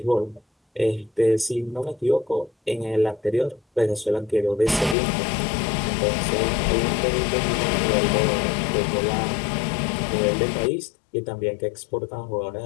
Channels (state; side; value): drops out; right; at 5.0 s